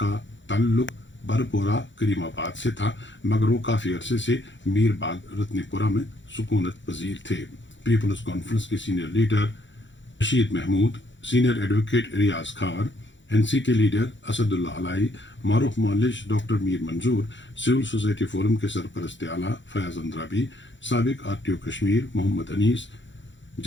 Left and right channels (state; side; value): late; right; 0.54 ms